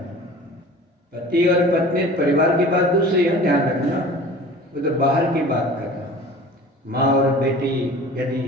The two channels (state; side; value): normal; both; correlation 0.42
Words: पति और पत्नी परिवार की बात दूसरी है, ध्यान रखना, वो तो बाहर की बात करना। माँ और बेटी यदि